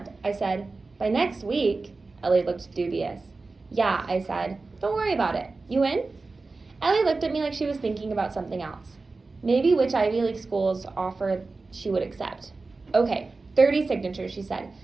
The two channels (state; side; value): quieter; left; 3.8 dB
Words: I said. By next week? Ellie looked dubious. Yeah, I said. Don't worry about it. You in? Ellie looked at me like she was thinking about something else. Maybe which Ivy League schools offer she would accept. Okay, 30 signatures, she said.